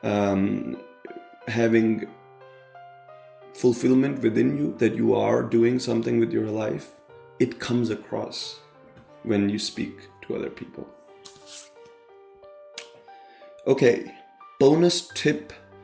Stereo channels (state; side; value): identical; both; correlation 1.00